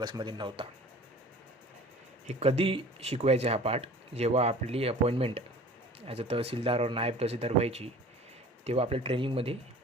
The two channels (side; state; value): both; normal; correlation 0.44